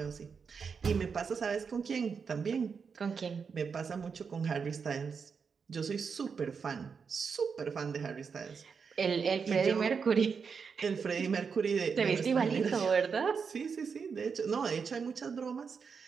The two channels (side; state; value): left; quieter; 5.8 dB